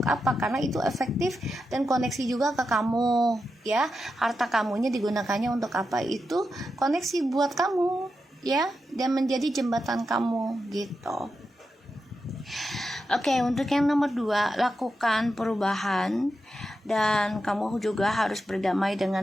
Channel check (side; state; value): both; normal; correlation 0.88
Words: apa, karena itu efektif dan koneksi juga ke kamu ya. Harta kamunya digunakannya untuk apa, itu koneksi buat kamu ya, dan menjadi jembatan kamu gitu. Oke, untuk yang nomor 2, lakukan perubahan. Dan kamu juga harus berdamai